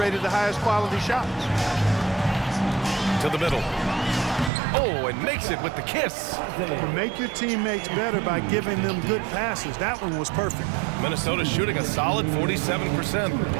the highest quality shots. To the middle. Oh, and makes it with the kiss. Make your teammates better by giving them good passes. That one was perfect. Minnesota shooting a solid 47%.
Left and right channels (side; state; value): left; drops out; at 4.5 s